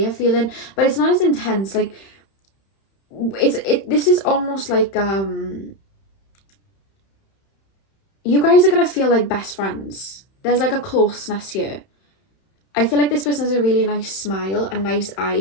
feeling, but it's not as intense. Like this is almost like you guys are going to feel like best friends. There's like a closeness here. I feel like this person has a really nice smile and nice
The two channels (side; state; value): right; late; 31 ms